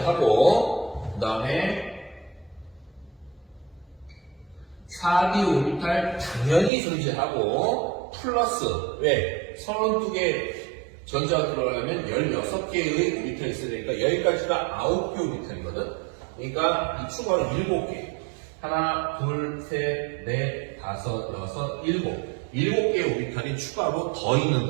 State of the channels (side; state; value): left; drops out; at 6.7 s